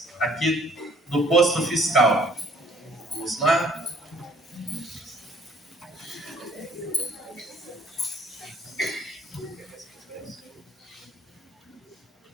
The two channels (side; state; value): both; normal; correlation 0.59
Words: aqui do posto fiscal. Vamos lá.